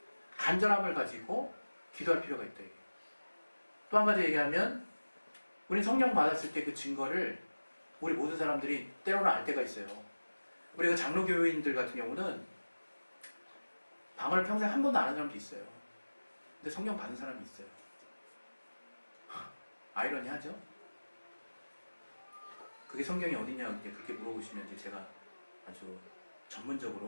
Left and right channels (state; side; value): inverted; both; correlation -1.00